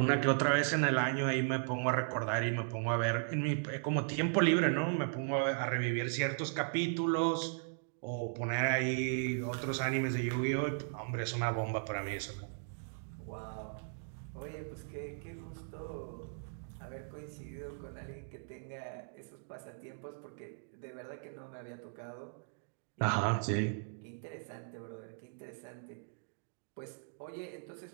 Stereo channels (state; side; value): silent; left; digital silence